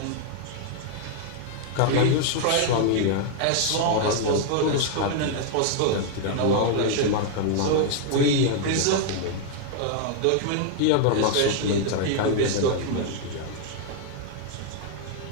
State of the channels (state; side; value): different; both; correlation 0.00